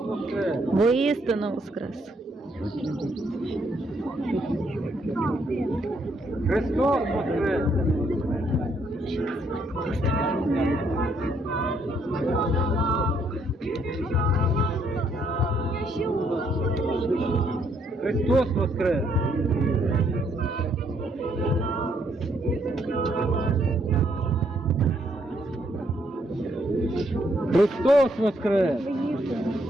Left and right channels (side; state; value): both; normal; correlation 0.71